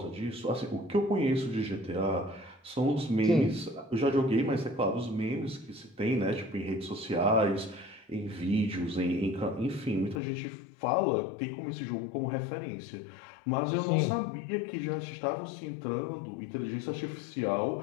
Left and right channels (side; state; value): right; drops out; at 10.2 s